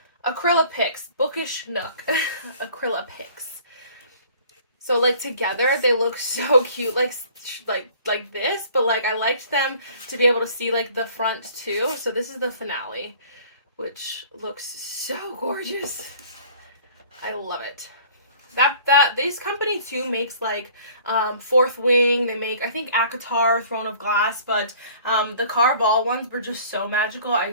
Acryla Picks. Bookish Nook. Acryla Picks. So like together they look so cute, like this, but like I liked them to be able to see like the front too. So this is the finale, which looks so gorgeous. I love it. This company too makes like Fourth Wing. They make, I think, ACOTAR, Throne of Glass, but the Carval ones were just so magical I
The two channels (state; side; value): inverted; both; correlation -0.51